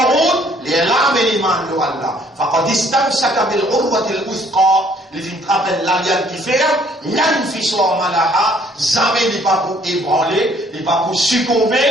les rames et l'iman de Allah. Faqad istamsaka bil urwati al-wuthqa. Les filles rappellent l'alliance qui fait, l'anfiswa malaha, jamais n'est pas pour ébranler, n'est pas pour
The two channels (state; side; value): normal; both; correlation 0.61